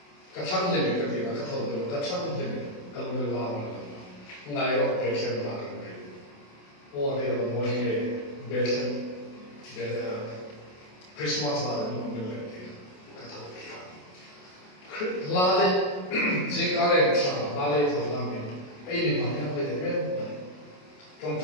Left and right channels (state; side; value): late; right; 28 ms